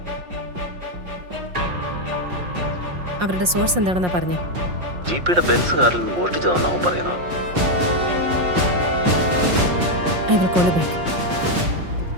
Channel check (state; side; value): late; left; 5.6 ms